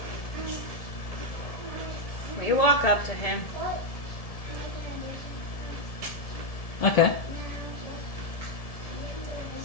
We walk up to him. Okay.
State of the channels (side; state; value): right; late; 1.7 ms